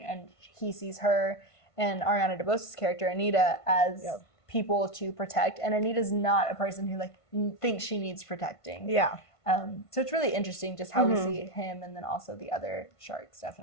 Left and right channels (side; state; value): right; late; 1.5 ms